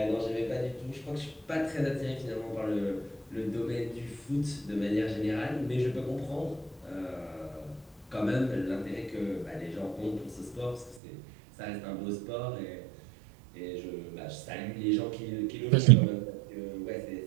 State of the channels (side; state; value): left; drops out; at 11.0 s